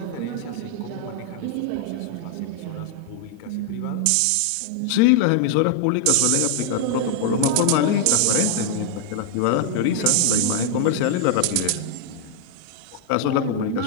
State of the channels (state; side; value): different; both; correlation 0.00